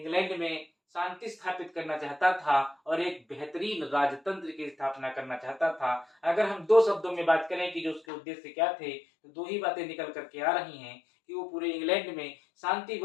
में शांति स्थापित करना चाहता था और एक बेहतरीन राजतंत्र की स्थापना करना चाहता था। अगर हम दो शब्दों में बात करें कि जो उसके उद्देश्य क्या थे, तो दो ही बातें निकल करके आ रही हैं कि वो पूरे इंग्लैंड में शांति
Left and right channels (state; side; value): drops out; right; at 8.0 s